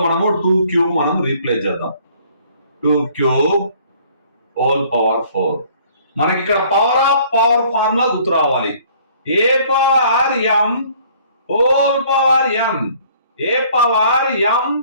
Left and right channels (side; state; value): both; inverted; correlation -0.57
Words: మనము 2 క్యూబ్ మనం రీప్లేస్ చేద్దాం. 2 క్యూబ్ హోల్ పవర్ 4. మనకి ఇక్కడ పవర్ ఆఫ్ పవర్ ఫార్ములా గుర్తు రావాలి. A power m whole power m, a power m